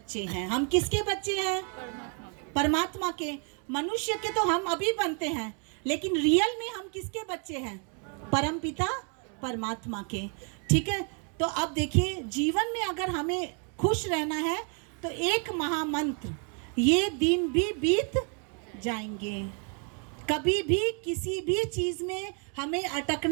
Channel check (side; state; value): left; quieter; 39.6 dB